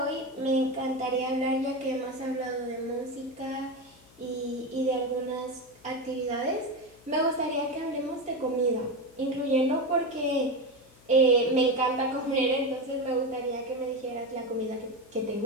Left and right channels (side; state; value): left; noise; hum, 27 dB below the sound